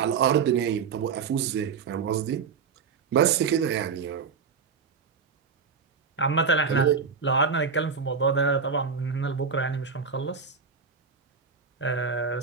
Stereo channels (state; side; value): quieter; left; 5.8 dB